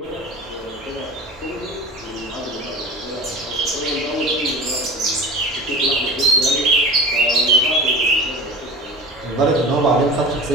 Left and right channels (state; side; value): normal; both; correlation 0.35